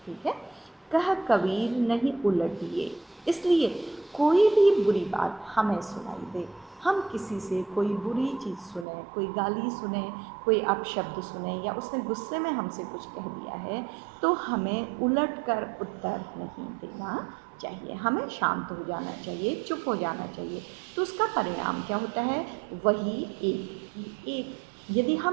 ठीक है। कह कबीर नहीं उलटिए, इसलिए कोई भी बुरी बात हमें सुनाई दे, हम किसी से कोई बुरी चीज़ सुने, कोई गाली सुने, कोई अपशब्द सुने, या उसने गुस्से में हमसे कुछ कह दिया है, तो हमें उलट कर उत्तर नहीं देना चाहिए, हमें शांत हो जाना चाहिए, चुप हो जाना चाहिए। तो उसका परिणाम क्या होता है? वही एक की एक। यदि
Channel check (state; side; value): drops out; left; at 8.8 s